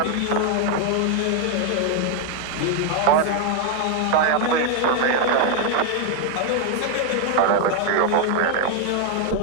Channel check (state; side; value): different; both; correlation 0.00